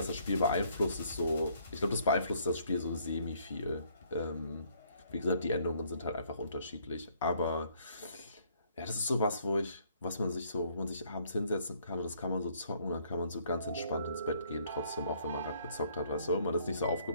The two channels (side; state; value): both; inverted; correlation -0.65